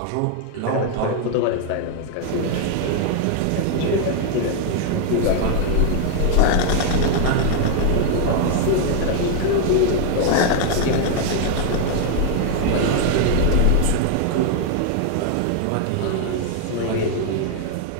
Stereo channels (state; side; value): different; both; correlation 0.00